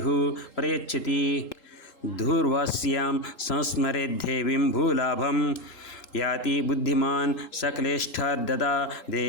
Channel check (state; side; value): late; right; 3.8 ms